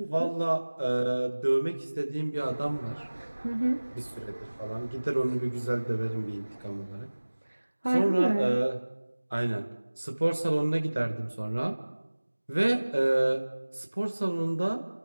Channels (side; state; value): both; inverted; correlation -1.00